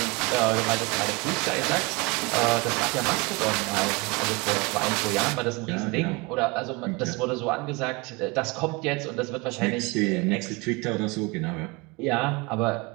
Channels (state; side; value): quieter; left; 26.5 dB